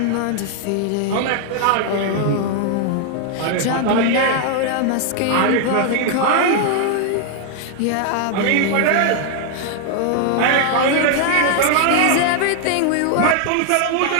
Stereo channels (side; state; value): both; different; correlation 0.00